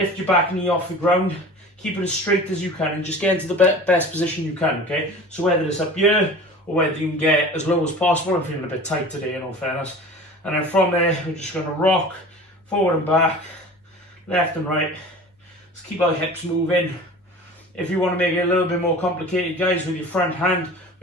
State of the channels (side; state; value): both; normal; correlation 0.39